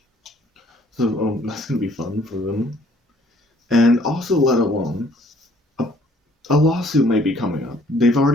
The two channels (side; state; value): both; normal; correlation 0.61